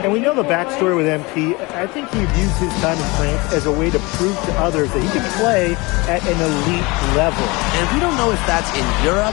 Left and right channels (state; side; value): quieter; right; 24.7 dB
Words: And we know the backstory with MP. I think he views his time in France as a way to prove to others that he can play at an elite level. And we don't know if that's in Europe